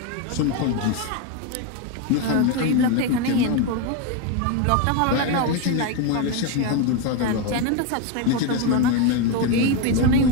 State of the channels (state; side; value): different; both; correlation 0.02